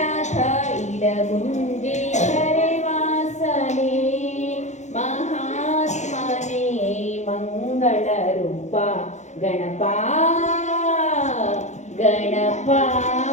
ಇಡಗುಂಜೇಶ್ವರೆ ವಾಸನೆ ಮಹಾತ್ಮನೇ ಮಂಗಳ ರೂಪ ಗಣಪ ಗಣಪ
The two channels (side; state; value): right; late; 0.34 ms